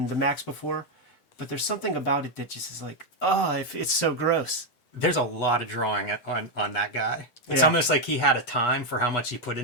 the Maxx before, but there's something about it that just is like, it's so gross. There's a lot of drawing on that guy. It's almost like he had a time for how much he put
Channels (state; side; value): late; right; 8.2 ms